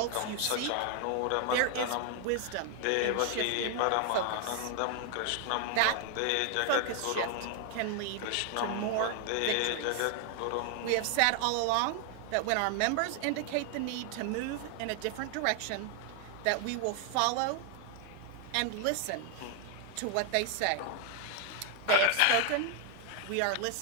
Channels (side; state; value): both; different; correlation 0.00